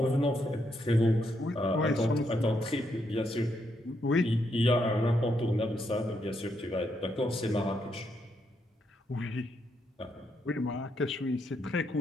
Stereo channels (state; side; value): normal; both; correlation 0.78